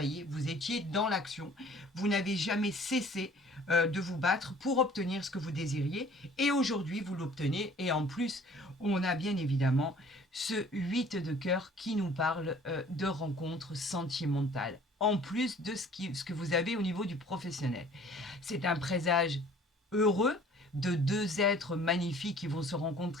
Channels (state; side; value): normal; both; correlation 0.52